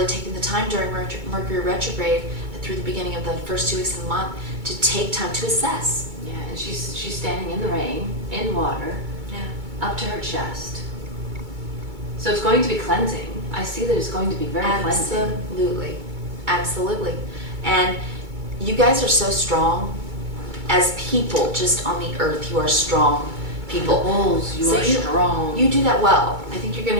taking the time during Mercury retrograde through the beginning of the first 2 weeks of the month to take time to assess. Yeah, and she's standing in the rain, in water, up to her chest. So it's going to be cleansing. I see that it's going to be very cleansing. Absolutely. And you guys are so strong as people, just on the earth. You are strong people. Bulls, you are strong. You do that well. I think you're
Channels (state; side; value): late; left; 2.2 ms